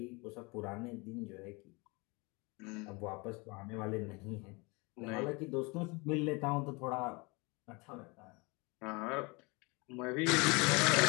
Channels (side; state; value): right; quieter; 27.4 dB